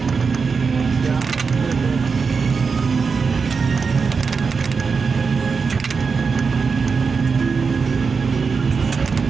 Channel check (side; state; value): left; quieter; 5.2 dB